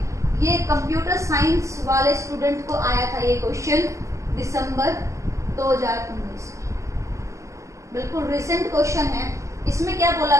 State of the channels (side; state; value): left; late; 0.15 ms